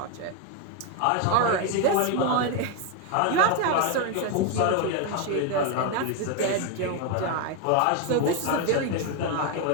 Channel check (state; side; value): different; both; correlation 0.01